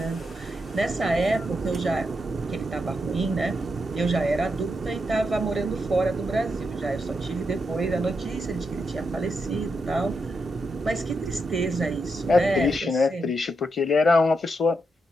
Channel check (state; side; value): normal; both; correlation 0.83